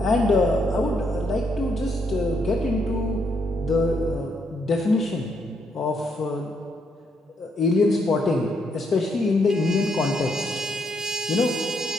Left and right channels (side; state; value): both; normal; correlation 0.76